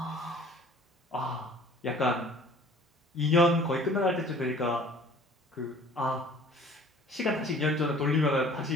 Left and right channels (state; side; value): normal; both; correlation 0.50